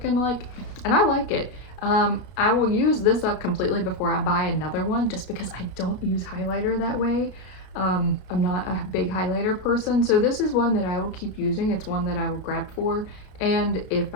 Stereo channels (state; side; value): late; right; 32 ms